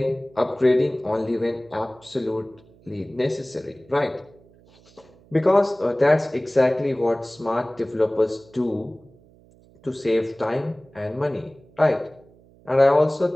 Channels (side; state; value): right; noise; hum, 28 dB below the sound